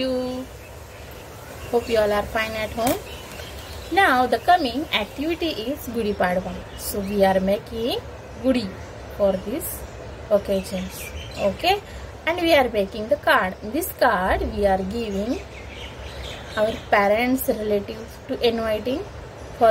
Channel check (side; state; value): both; identical; correlation 1.00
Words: Hope you all are fine at home. Now, the coming activity is Gudi Padwa. So, we are making Gudi for this occasions. Okay? And we are making the card. In this card, we are giving our parents, relatives to inviting for